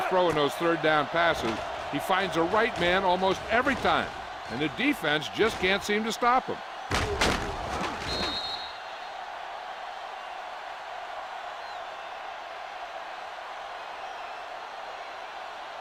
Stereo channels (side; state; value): both; identical; correlation 1.00